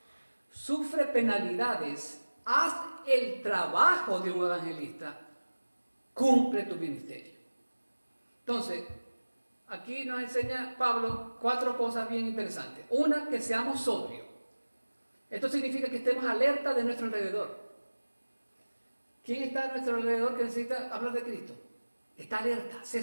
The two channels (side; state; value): both; inverted; correlation -1.00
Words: sufre penalidades, haz el trabajo de un evangelista, cumple tu ministerio. Entonces, aquí nos enseña Pablo 4 cosas bien interesantes. Una, que seamos sobrios. Esto significa que estemos alerta de nuestro alrededor. ¿Quién está a nuestro alrededor que necesita hablar de Cristo? Está alerta, sé